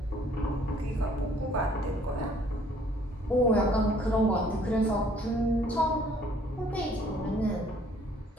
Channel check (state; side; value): normal; both; correlation 0.59